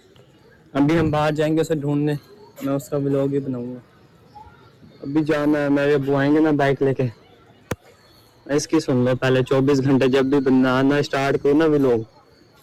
अभी हम बाहर जाएंगे उसे ढूंढने, मैं उसका व्लॉग ही बनाऊंगा। अभी जाना है, मेरे अब्बू आएंगे ना बाइक लेके। इसकी सुन लो पहले, 24 घंटे जब भी बनाना स्टार्ट करो ना व्लॉग,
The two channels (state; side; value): identical; both; correlation 1.00